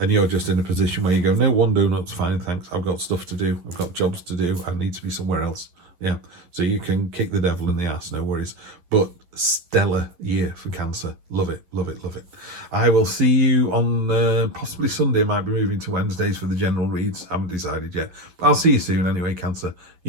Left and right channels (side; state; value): left; late; 11 ms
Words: you're just in a position where you go, no, 1 donut's fine, thanks. I've got stuff to do. I've got jobs to do. I need to be somewhere else. Yeah. So you can kick the Devil in the ass, no worries. But stellar year for Cancer. Love it, love it, love it. I will see you on possibly Sunday. I might be moving to Wednesdays for the general reads. Haven't decided yet. But I'll see you soon anyway, Cancer.